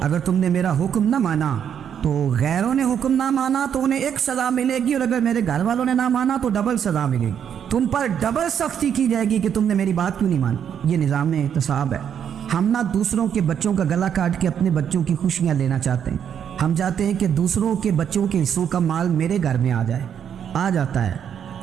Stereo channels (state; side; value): quieter; left; 8.5 dB